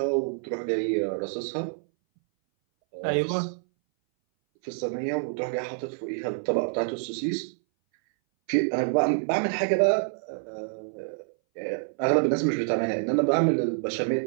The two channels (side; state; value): left; silent; 59 dB below the other